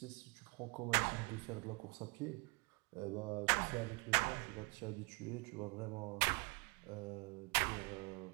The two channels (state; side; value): quieter; left; 29.9 dB